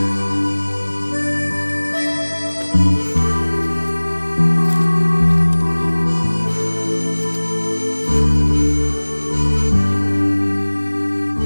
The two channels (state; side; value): inverted; both; correlation -1.00